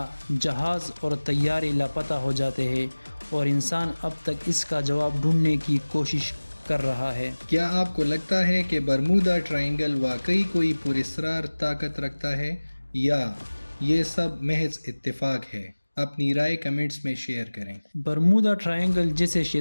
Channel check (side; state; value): both; inverted; correlation -1.00